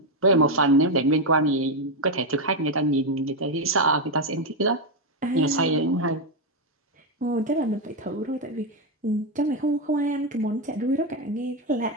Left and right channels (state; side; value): normal; both; correlation 0.05